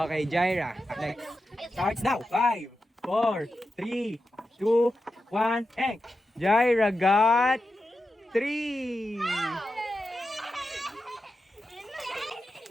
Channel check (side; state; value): both; normal; correlation 0.90